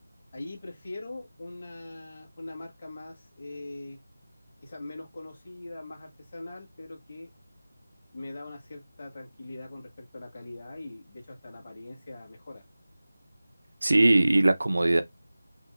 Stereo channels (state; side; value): inverted; both; correlation -0.99